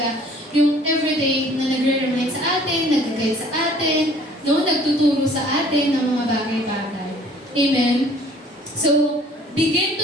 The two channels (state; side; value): normal; both; correlation 0.54